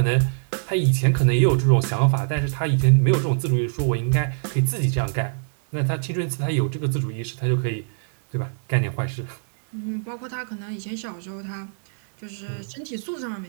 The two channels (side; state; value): left; silent; 61 dB below the other